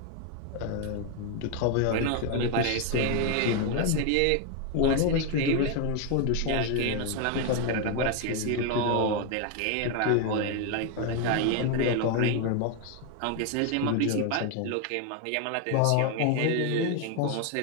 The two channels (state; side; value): different; both; correlation 0.01